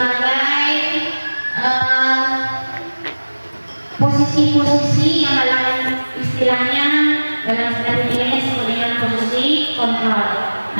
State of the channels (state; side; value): inverted; both; correlation -1.00